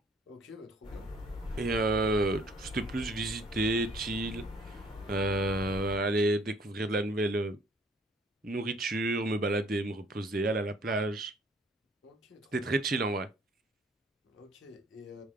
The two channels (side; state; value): both; normal; correlation 0.59